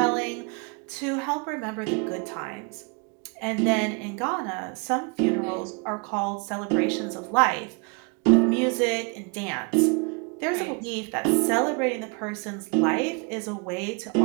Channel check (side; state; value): left; quieter; 33.3 dB